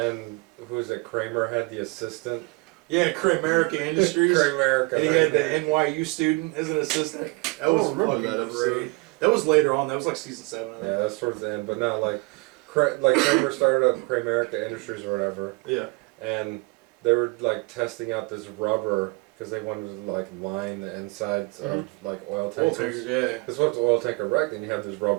who was it? Kramer had the assistant. Yeah, America Industries. America. And he had the NYU student as an assistant. That was remember fucking that episode. great. That was later on. That was like season 7. I think. Yeah, that's towards the end. But no, like Kramer started up America Industries or whatever, Yeah. and they were like testing out this rubber because they wanted to like line the insides of like oil Oil tankers. tankers, yeah. Because once the oil tanker wrecked, then you have this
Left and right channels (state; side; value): quieter; left; 26.7 dB